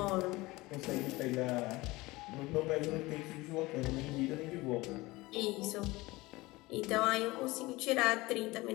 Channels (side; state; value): right; quieter; 21.0 dB